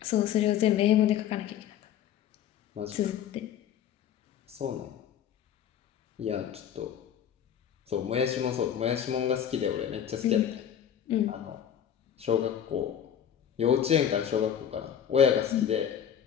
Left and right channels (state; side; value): quieter; right; 9.4 dB